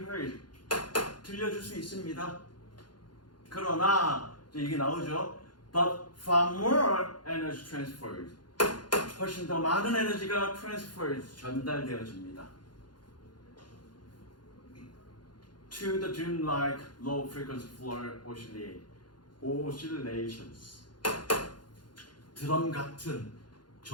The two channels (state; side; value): late; right; 0.71 ms